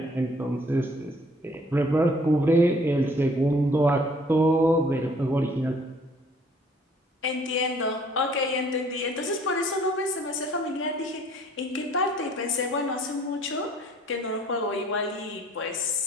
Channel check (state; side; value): normal; both; correlation 0.58